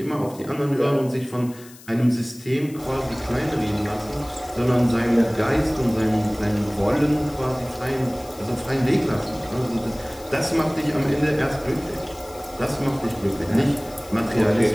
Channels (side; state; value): left; noise; hiss, 21 dB below the sound